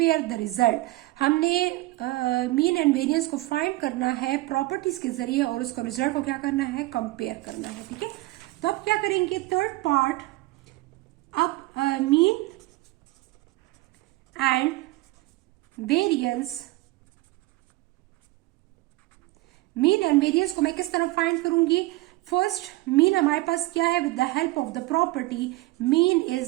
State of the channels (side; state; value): left; quieter; 19.8 dB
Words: the result. हमने मीन एंड वेरिएंस को फाइंड करना है प्रॉपर्टीज के जरिए और उसको रिजल्ट को क्या करना है, कंपेयर करना है, ठीक है। तो अब क्या करेंगे, थर्ड पार्ट, अब mean and variance, mean and variance को मैं किस तरह फाइंड करूंगी। फर्स्ट मीन हमारे पास क्या है, with the help of the property mean